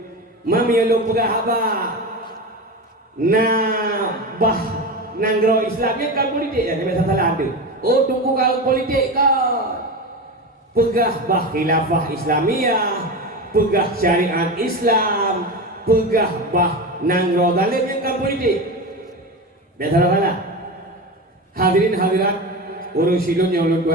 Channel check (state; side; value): normal; both; correlation 0.23